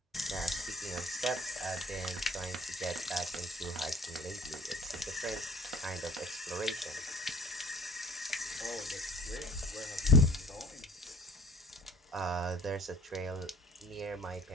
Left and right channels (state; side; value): normal; both; correlation 0.50